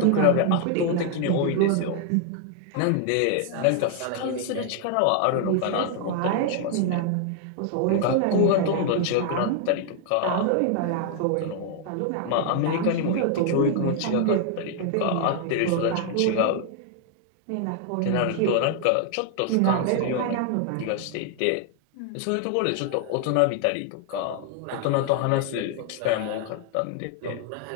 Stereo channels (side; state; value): both; different; correlation 0.00